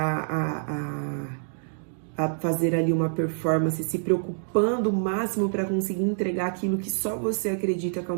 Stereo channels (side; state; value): left; silent; digital silence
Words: a fazer ali uma performance, se preocupando o máximo para conseguir entregar aquilo que só você acredita que é